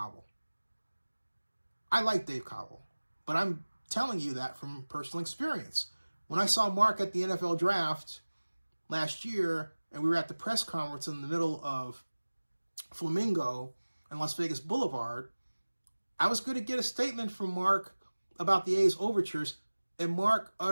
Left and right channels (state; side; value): inverted; both; correlation -1.00